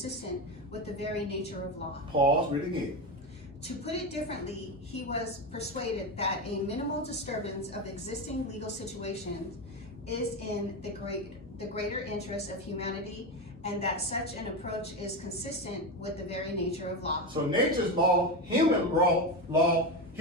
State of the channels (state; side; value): normal; both; correlation 0.17